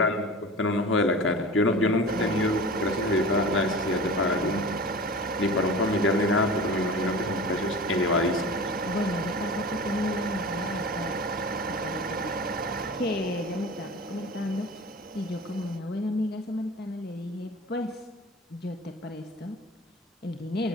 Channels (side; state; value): both; normal; correlation 0.35